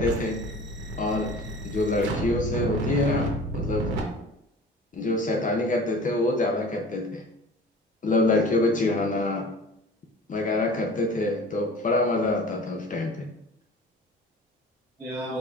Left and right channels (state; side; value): normal; both; correlation 0.42